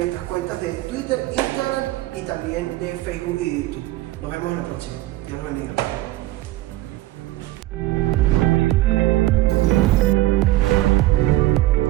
cuentas de Twitter, Instagram y también de Facebook y YouTube. Nos vemos en la próxima. Dios los bendiga.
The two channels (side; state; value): left; quieter; 16.6 dB